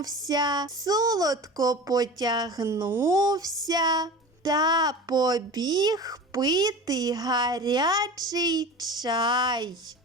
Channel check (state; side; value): normal; both; correlation 0.33